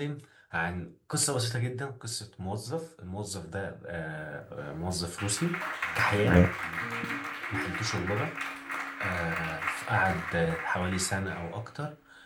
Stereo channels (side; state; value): both; identical; correlation 1.00